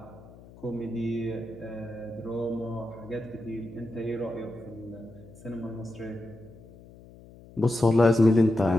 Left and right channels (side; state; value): left; noise; hum, 21 dB below the sound